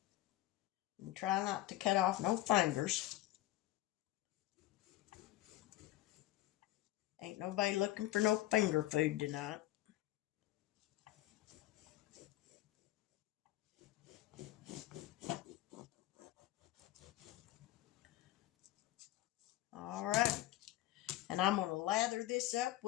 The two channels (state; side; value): quieter; right; 15.5 dB